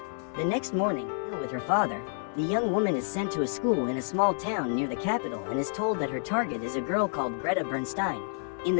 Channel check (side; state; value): right; silent; 58 dB below the other